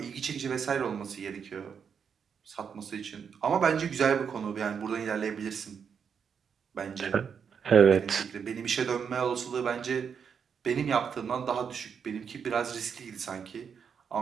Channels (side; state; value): left; quieter; 6.9 dB